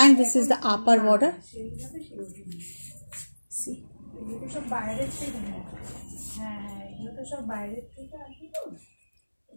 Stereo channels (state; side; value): inverted; both; correlation -1.00